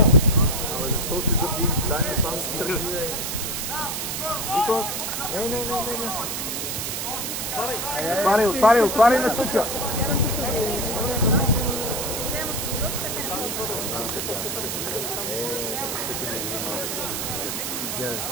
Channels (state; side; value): noise; right; hiss, 3 dB below the sound